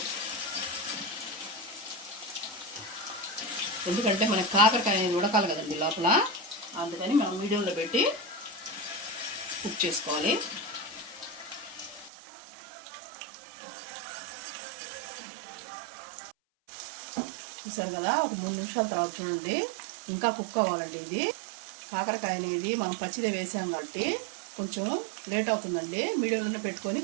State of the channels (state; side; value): drops out; left; at 12.1 s